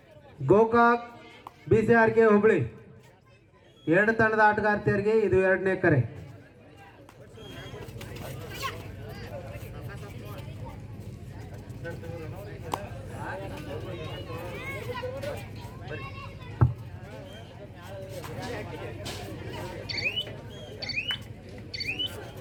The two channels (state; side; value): identical; both; correlation 1.00